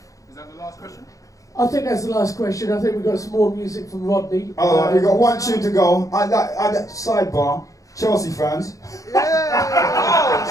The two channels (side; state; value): right; late; 0.16 ms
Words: Is that the last question? I think that's the last question. I think we've got some more music from Rodney. Alright, we've got one tune to go. Sidebar, Chelsea fans.